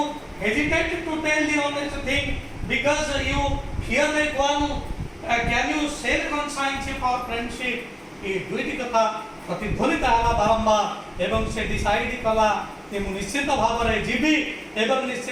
hesitate to tell the honest thing because you fear like one. Can you sell conscience for friendship? ए दुईटी कथा प्रतिध्वनित होला बारंबार एवं से डिसाइड कला कि मु निश्चित भाव रे जीवी एवं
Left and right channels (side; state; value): both; identical; correlation 1.00